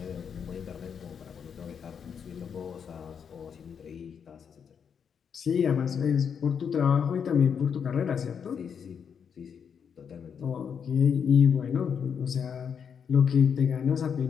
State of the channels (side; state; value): right; quieter; 7.1 dB